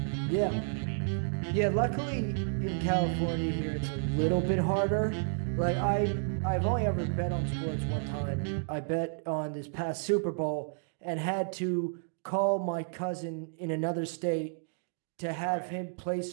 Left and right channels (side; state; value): left; silent; digital silence